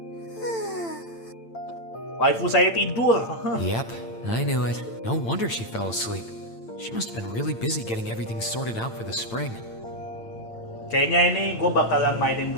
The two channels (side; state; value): right; late; 8.9 ms